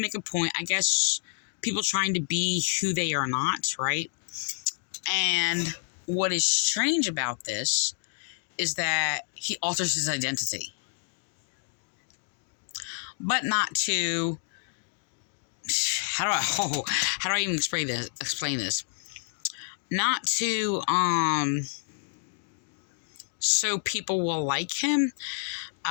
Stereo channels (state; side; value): silent; right; digital silence